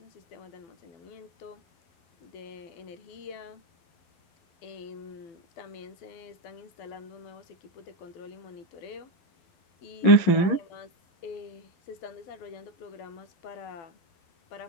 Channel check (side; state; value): right; late; 11 ms